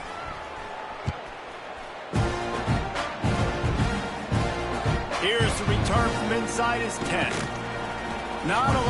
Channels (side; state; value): both; identical; correlation 1.00